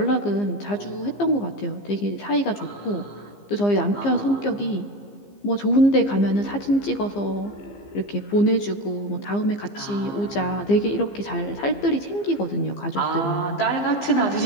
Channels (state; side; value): late; right; 15 ms